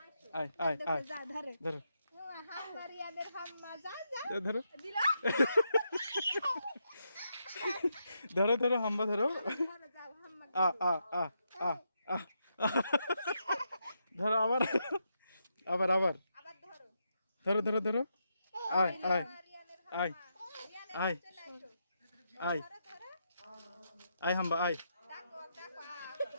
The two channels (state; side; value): inverted; both; correlation -0.82